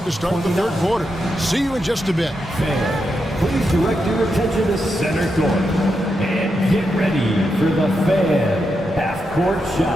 to start the third quarter. See you in just a bit. Please direct your attention to center court and get ready for the Fan half-court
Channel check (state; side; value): normal; both; correlation 0.85